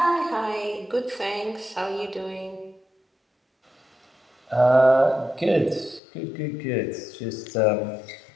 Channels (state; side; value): drops out; right; at 6.0 s